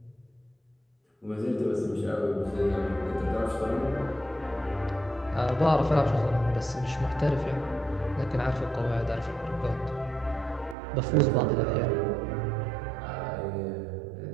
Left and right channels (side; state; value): left; drops out; at 10.8 s